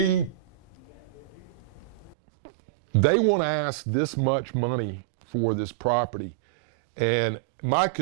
they want to ask this much money for this property. And my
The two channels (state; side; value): drops out; left; at 2.1 s